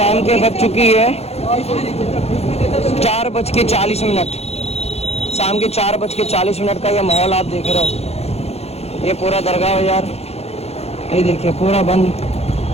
के बज चुकी है 4:40। शाम के 4:40 का ये माहौल आप देख रहे हो। ये पूरा दरगाह बाजार ये देखिए पूरा बंद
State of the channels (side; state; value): right; late; 0.30 ms